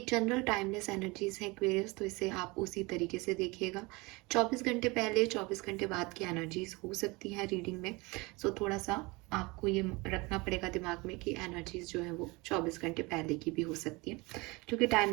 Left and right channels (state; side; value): quieter; left; 24.9 dB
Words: जनरल टाइमलेस एनर्जीज है एक्वेरियस, तो इसे आप उसी तरीके से देखिएगा। 24 घंटे पहले 24 घंटे बाद की एनर्जीज हो सकती हैं रीडिंग में, सो थोड़ा सा आपको ये रखना पड़ेगा दिमाग में कि एनर्जीज जो है वो 24 घंटे पहले की भी हो सकती है, क्योंकि